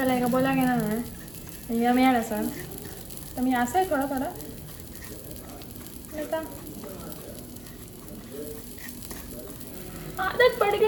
का बोला घेणार नाही या मिळाल असाल तर मी असं आहे थोडं थोडं नाही का. आदत पड़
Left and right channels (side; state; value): right; noise; hum, 21 dB below the sound